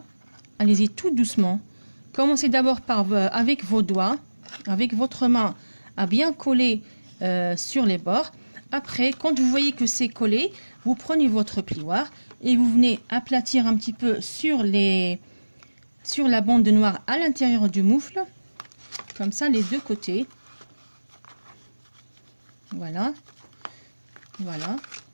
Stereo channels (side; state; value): both; inverted; correlation -1.00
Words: Allez-y tout doucement. Commencez d'abord par avec vos doigts, avec votre main, à bien coller sur les bords. Après, quand vous voyez que c'est collé, vous prenez votre plioir et vous venez aplatir un petit peu sur la bande noire à l'intérieur du moufle. Comme ça, les deux côtés. Voilà. Voilà.